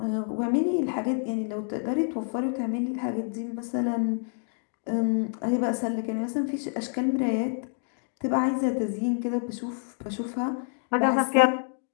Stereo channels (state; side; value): silent; right; 59 dB below the other